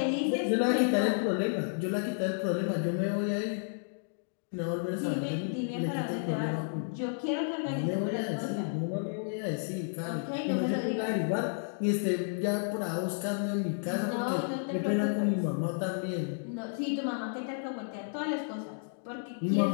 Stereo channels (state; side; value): silent; right; digital silence